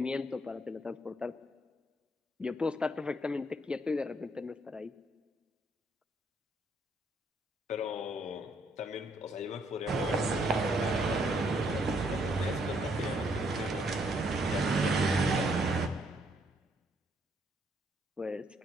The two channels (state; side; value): normal; both; correlation 0.70